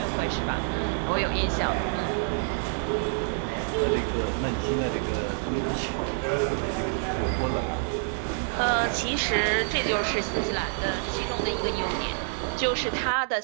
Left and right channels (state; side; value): silent; left; 60 dB below the other